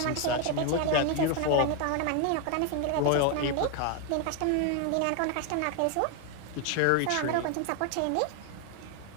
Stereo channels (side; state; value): both; different; correlation 0.01